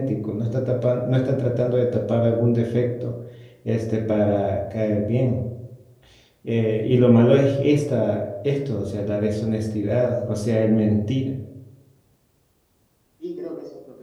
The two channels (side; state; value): both; identical; correlation 1.00